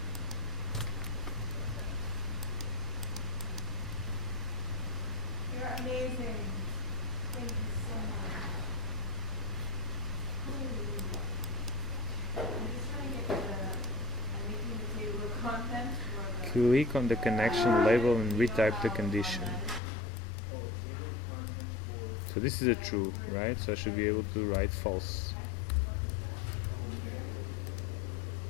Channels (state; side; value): drops out; right; at 19.8 s